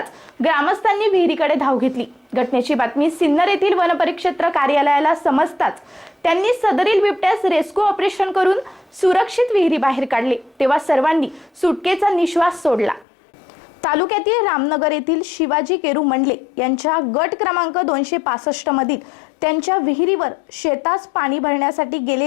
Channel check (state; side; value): drops out; right; at 13.1 s